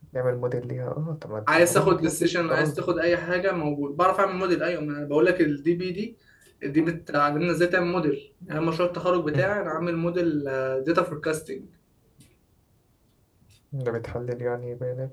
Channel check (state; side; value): identical; both; correlation 1.00